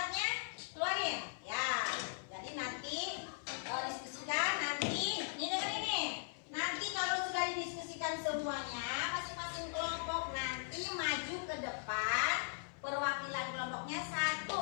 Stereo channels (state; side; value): silent; right; 52 dB below the other